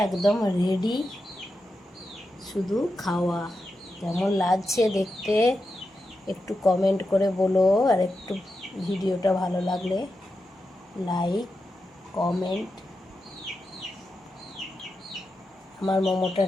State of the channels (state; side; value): normal; both; correlation 0.89